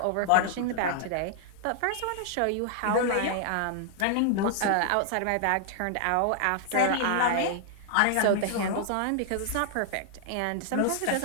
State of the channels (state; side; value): different; both; correlation -0.01